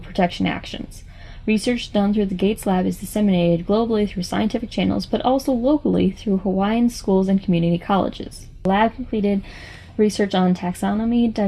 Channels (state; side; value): identical; both; correlation 1.00